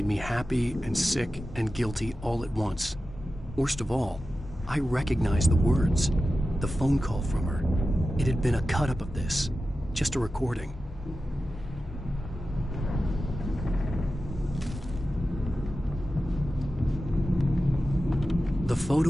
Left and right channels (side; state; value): both; normal; correlation 0.93